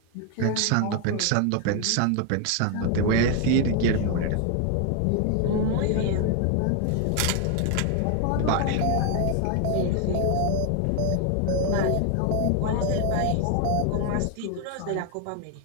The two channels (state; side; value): different; both; correlation 0.01